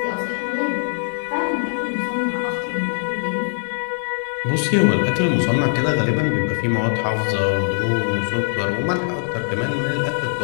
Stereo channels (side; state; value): right; silent; digital silence